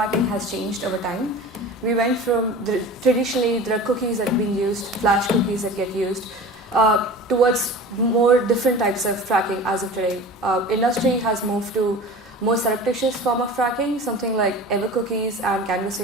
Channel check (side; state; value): both; normal; correlation 0.37